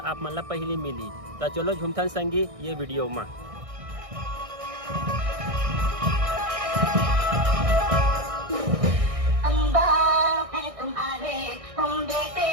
आप मन ला पहली मिली। तो चलो झुमथन संगी ये वीडियो में। तुम बेटे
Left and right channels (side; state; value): left; late; 1.6 ms